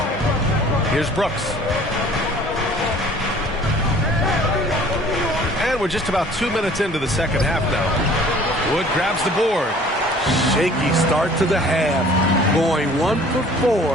Here's Brooks. And we're just about 2 minutes into the second half now. Wood grabs the board. Shaky start to the half. Going 1 for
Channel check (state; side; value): normal; both; correlation 0.51